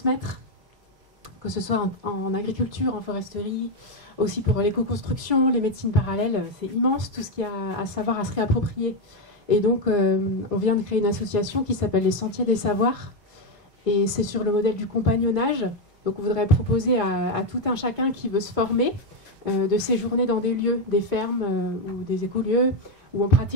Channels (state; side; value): normal; both; correlation 0.06